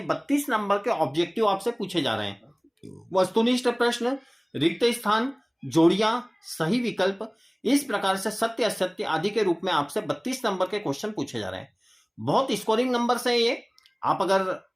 32 नंबर के ऑब्जेक्टिव आपसे पूछे जा रहे हैं। वस्तुनिष्ठ प्रश्न, रिक्त स्थान, जोड़ियां, सही विकल्प, इस प्रकार से सत्य असत्य आदि के रूप में आपसे 32 नंबर के क्वेश्चन पूछे जा रहे हैं। बहुत स्कोरिंग नंबर है ये। आप अगर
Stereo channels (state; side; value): identical; both; correlation 1.00